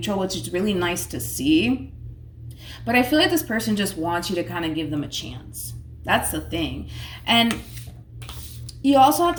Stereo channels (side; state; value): both; identical; correlation 1.00